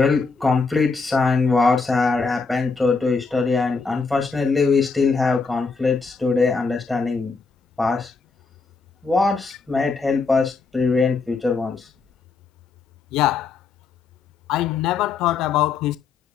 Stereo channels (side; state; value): right; quieter; 4.6 dB